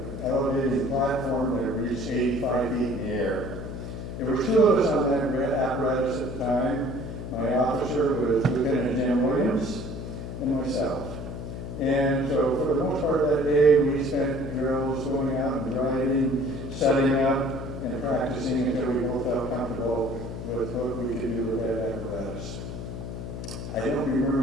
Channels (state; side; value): noise; left; hum, 7 dB below the sound